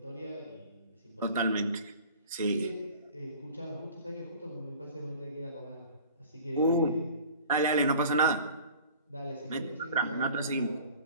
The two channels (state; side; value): inverted; both; correlation -0.45